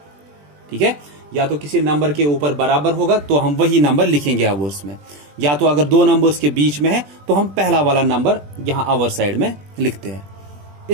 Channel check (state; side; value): late; left; 20 ms